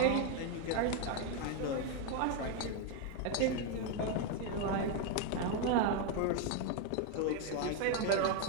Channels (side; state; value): both; different; correlation 0.01